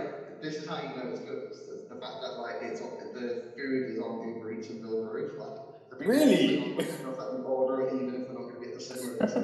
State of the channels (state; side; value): identical; both; correlation 1.00